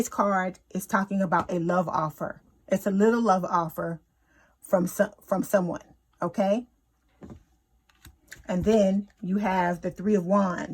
card is talking about a love offer. It's a little love offer from someone. Okay. And then you have the Three of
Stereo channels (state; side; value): identical; both; correlation 1.00